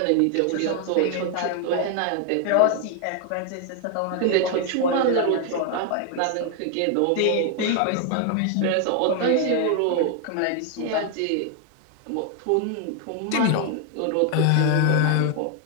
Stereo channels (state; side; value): different; both; correlation 0.00